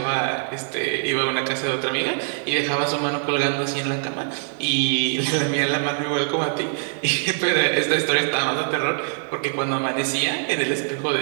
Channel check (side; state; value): left; silent; digital silence